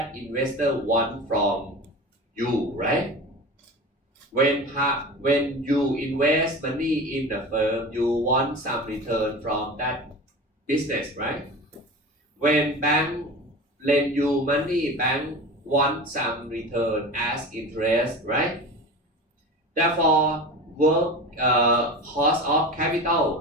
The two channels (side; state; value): both; normal; correlation 0.32